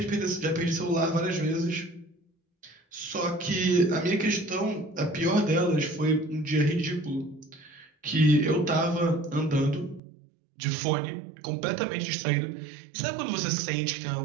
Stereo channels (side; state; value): left; drops out; at 10.0 s